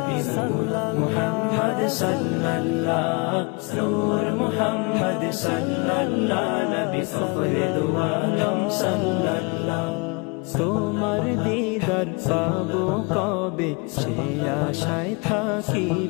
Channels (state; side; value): quieter; right; 29.8 dB